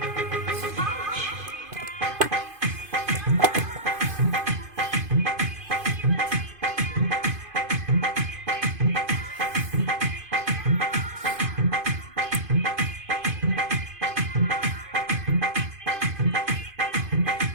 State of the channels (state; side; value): late; left; 2.5 ms